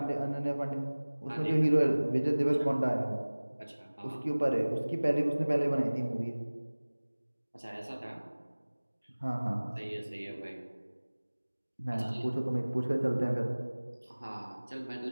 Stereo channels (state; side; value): inverted; both; correlation -1.00